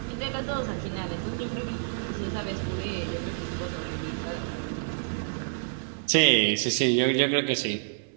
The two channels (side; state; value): left; silent; 59 dB below the other